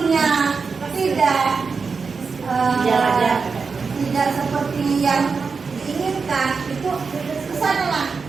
tidak seperti yang diinginkan, itu kesanalah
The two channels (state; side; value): quieter; left; 5.0 dB